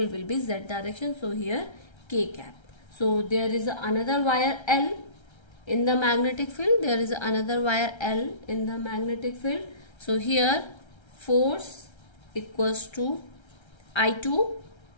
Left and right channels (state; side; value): late; right; 1.3 ms